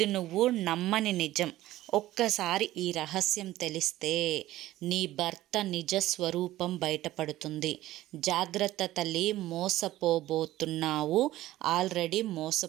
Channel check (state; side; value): quieter; left; 15.4 dB